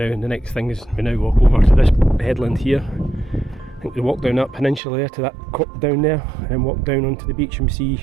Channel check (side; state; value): left; drops out; at 4.8 s